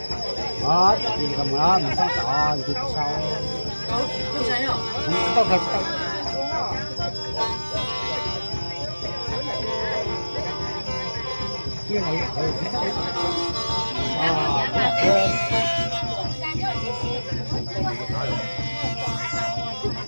đó, thì cầm đó mình xong tỏ thì sau. Không phải kia này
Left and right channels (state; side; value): inverted; both; correlation -1.00